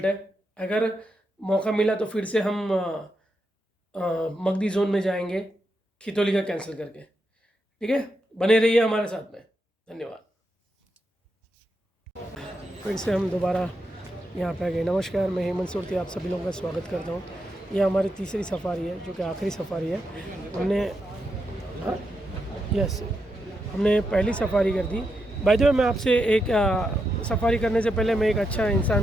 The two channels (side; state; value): both; normal; correlation 0.84